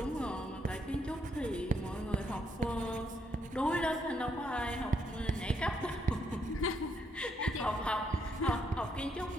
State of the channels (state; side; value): normal; both; correlation 0.75